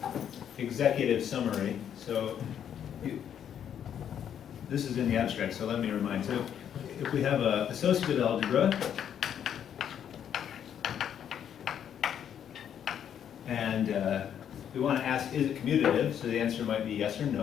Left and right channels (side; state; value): right; quieter; 9.1 dB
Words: executive summary. So, this is in the abstract, so let me remind. So, if we have an associative algebra, and we want to ask, is it commutative? So the answer might be yes or